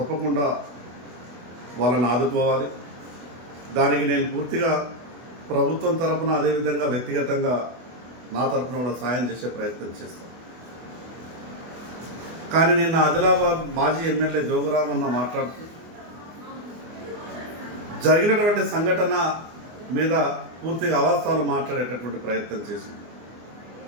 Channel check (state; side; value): late; left; 24 ms